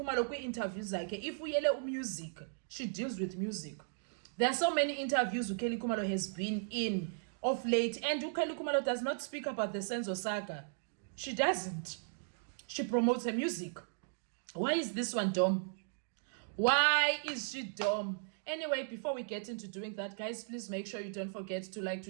kwi-interviews like if we yell music, she deals with music. There are so many interviews Ukeli Kumalo has been in of late, and Ukeli Kumalo does not speak about the Senzo saga. She doesn't. She promotes her music. Why is this one dumb? Why is she dumb? Anyway, before we get into doing that, guys, please make sure you don't forget to like, to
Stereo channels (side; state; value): left; silent; digital silence